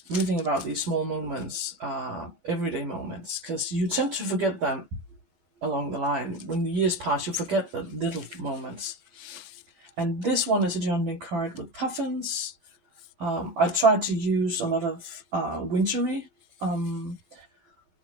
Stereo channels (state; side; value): late; left; 12 ms